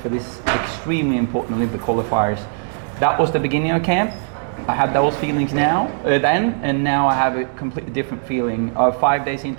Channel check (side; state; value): left; silent; digital silence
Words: this extremely important Olympic qualifiers. That was the beginning of camp. I had those feelings then, and now I have a completely different feeling. 5 days